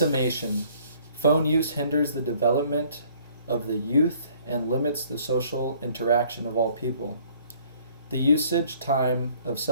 phone use hinders the development of the youth and limits the social interaction of all people. The usage time of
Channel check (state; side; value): inverted; both; correlation -0.59